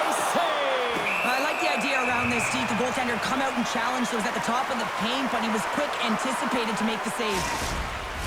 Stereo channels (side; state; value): both; identical; correlation 1.00